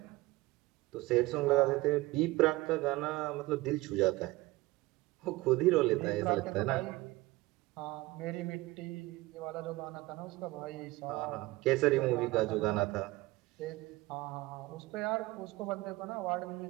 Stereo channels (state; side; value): quieter; left; 20.0 dB